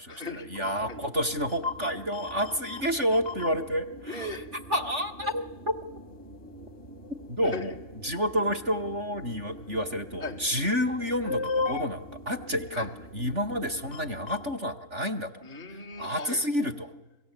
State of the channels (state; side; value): late; left; 3.4 ms